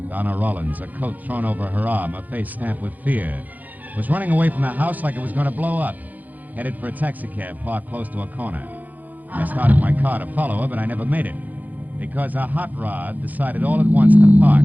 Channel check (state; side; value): late; left; 0.081 ms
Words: Donna Rollins, a coat thrown over her arm, her face stamped with fear, was running away from the house like it was going to blow up, headed for a taxicab parked close to a corner. I started my car to follow her, but I never made it, because a hot rod decided all at once to park